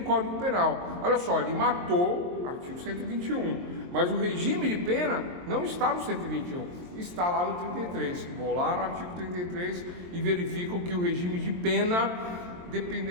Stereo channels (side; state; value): left; late; 23 ms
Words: Código Penal. Olha só, ele matou, artigo 121. Mas o regime de pena não está no 121, está lá no 33. Vou lá no artigo 33 e verifico que o regime de pena